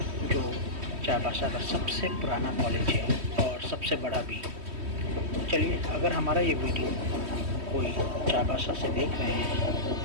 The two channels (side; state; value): left; late; 3.1 ms